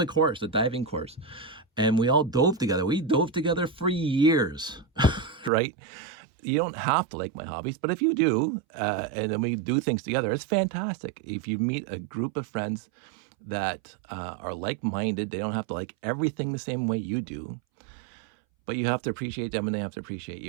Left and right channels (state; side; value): drops out; left; at 5.5 s